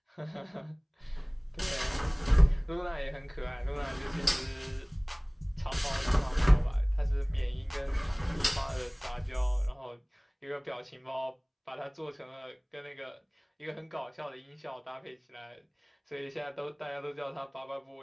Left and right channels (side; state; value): both; identical; correlation 1.00